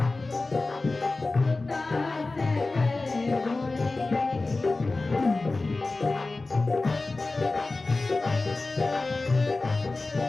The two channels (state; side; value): quieter; right; 3.4 dB